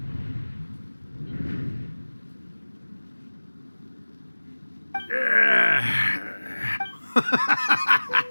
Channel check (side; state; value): both; inverted; correlation -1.00